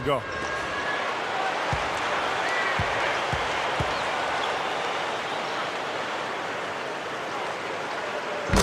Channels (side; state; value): both; identical; correlation 1.00